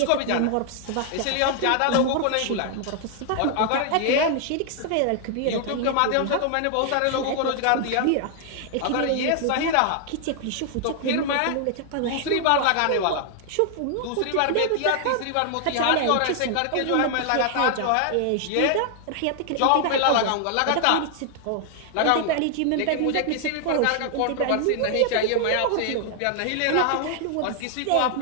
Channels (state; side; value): different; both; correlation 0.00